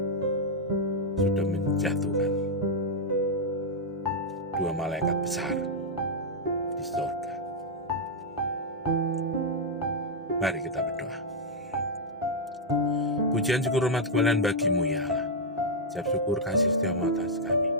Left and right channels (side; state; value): both; normal; correlation -0.04